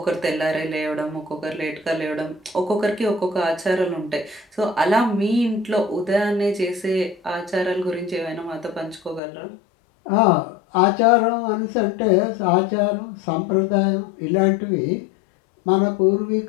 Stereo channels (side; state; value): right; drops out; at 9.2 s